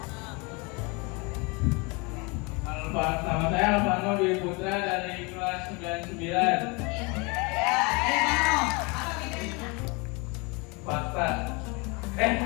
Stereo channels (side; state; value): right; quieter; 28.7 dB